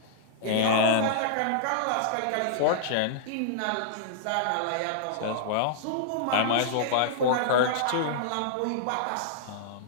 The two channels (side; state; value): both; different; correlation -0.02